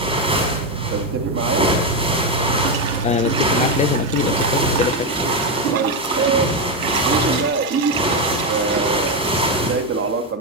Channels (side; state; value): both; normal; correlation 0.07